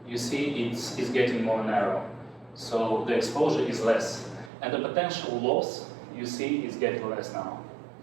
you see it's getting more narrow. So the exposure is less. And the potential loss, you see, is getting less now.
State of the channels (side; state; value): left; drops out; at 4.5 s